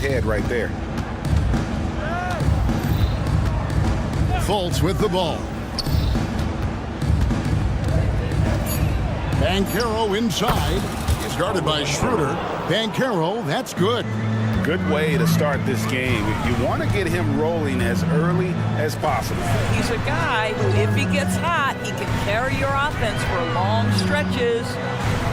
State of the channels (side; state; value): both; identical; correlation 1.00